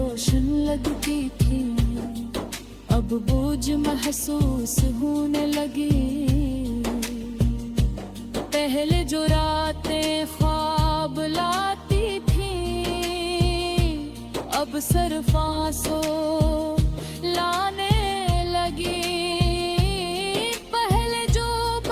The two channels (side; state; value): both; identical; correlation 1.00